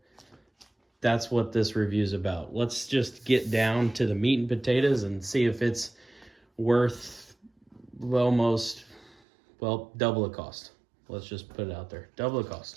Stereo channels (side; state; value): left; drops out; at 9.2 s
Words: that's what this review is about. Let's just get down to the meat and potatoes and see if it's worth almost, well, double the cost. Let's just put it out there. Double the